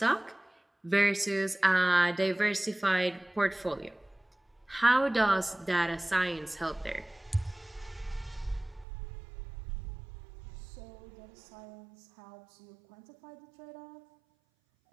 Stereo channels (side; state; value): left; drops out; at 8.8 s